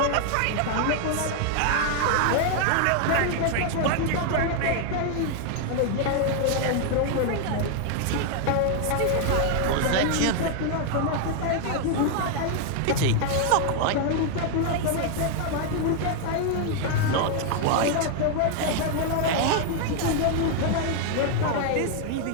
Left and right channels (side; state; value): both; different; correlation 0.00